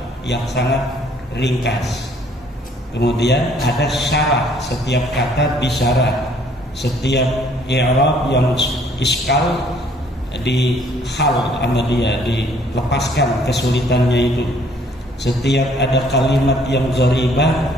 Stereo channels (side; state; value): both; normal; correlation 0.61